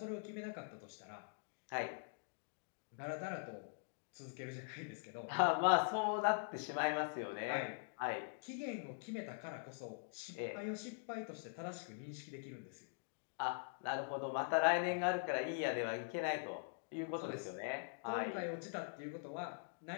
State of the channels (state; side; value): silent; right; digital silence